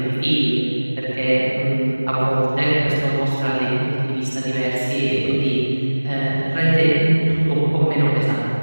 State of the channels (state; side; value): inverted; both; correlation -1.00